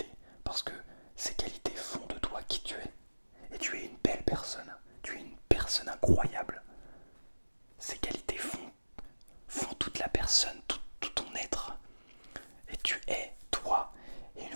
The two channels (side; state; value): both; inverted; correlation -1.00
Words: parce que ces qualités font de toi qui tu es. Et tu es une belle personne, tu es une personne incroyable. Ces qualités font toute la personne, tout ton être. Et tu es toi. Et une